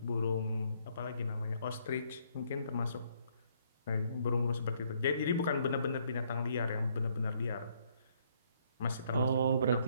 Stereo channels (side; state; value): both; inverted; correlation -0.69